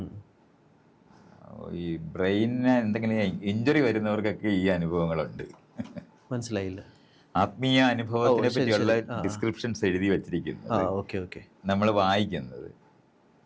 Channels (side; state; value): both; identical; correlation 1.00